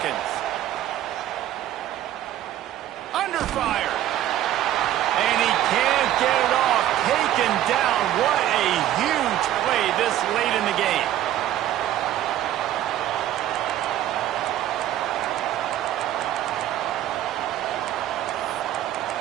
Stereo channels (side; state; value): left; quieter; 12.5 dB